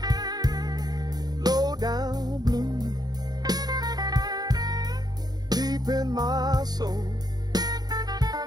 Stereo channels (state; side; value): late; left; 0.19 ms